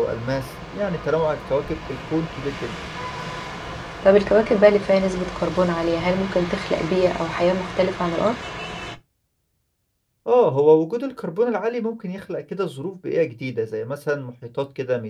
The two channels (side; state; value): both; identical; correlation 1.00